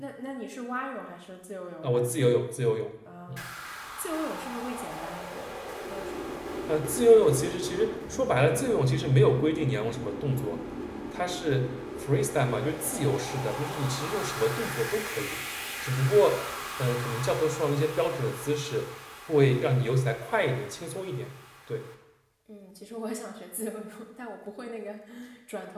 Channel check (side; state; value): both; identical; correlation 1.00